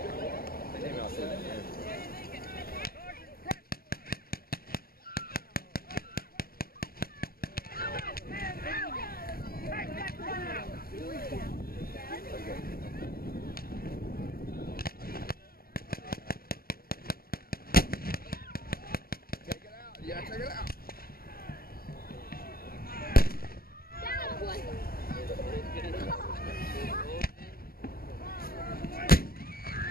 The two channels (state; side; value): late; right; 0.43 ms